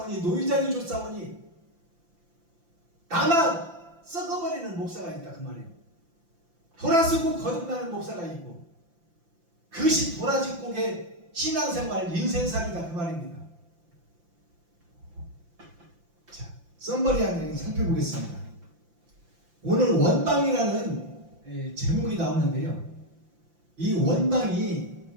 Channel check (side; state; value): left; late; 5.8 ms